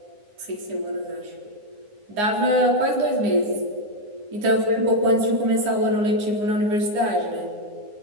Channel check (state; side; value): late; left; 9.7 ms